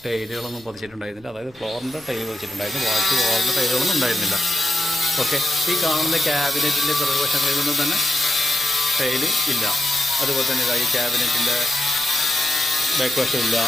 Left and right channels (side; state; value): left; noise; rumble, 28 dB below the sound